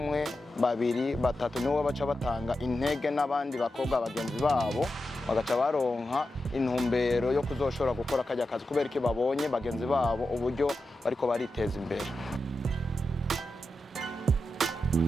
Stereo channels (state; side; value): normal; both; correlation 0.90